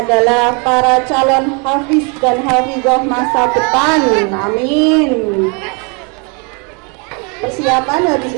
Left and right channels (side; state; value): left; quieter; 33.6 dB